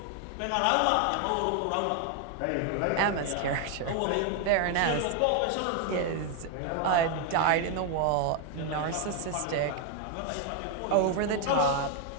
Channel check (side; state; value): both; different; correlation 0.01